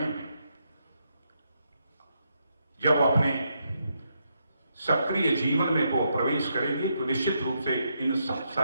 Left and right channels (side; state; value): both; inverted; correlation -0.79